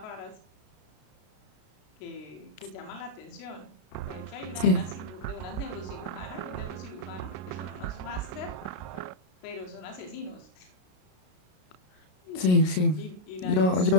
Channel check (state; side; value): late; right; 33 ms